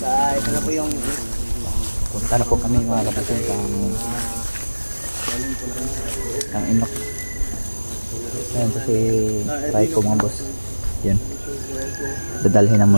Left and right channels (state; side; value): inverted; both; correlation -1.00